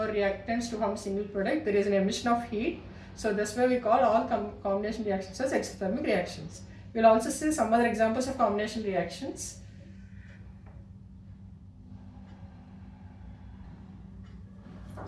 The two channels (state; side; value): identical; both; correlation 1.00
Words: reactants to form a single product, there is an emission of heat. So that's why we call all combination reactions as exothermic reactions. We'll also see some other examples of combination reactions.